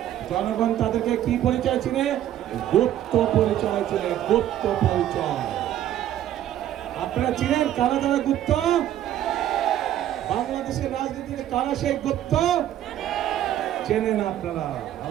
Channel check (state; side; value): quieter; left; 11.9 dB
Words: জনগণ তাদেরকে কি পরিচয় চিনে? গুপ্ত পরিচয় চিনে, গুপ্ত পরিচয়। আপনারা চিনেন কারা যারা গুপ্ত? বাংলাদেশের রাজনীতিতে কারা সেই গুপ্ত? চেনেন আপনারা,